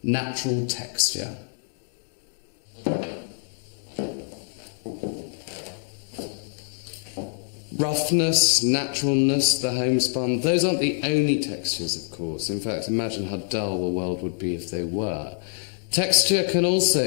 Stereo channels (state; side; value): silent; right; 61 dB below the other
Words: natural texture. Roughness, naturalness, the homespun, those aren't the only textures, of course. In fact, imagine how dull the world would be if they were. Texture can